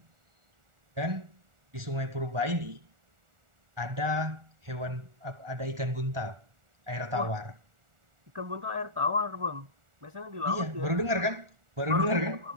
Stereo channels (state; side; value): late; left; 1.4 ms